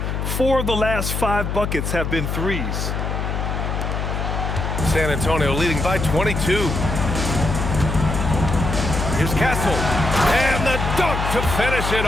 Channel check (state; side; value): noise; left; hum, 2 dB below the sound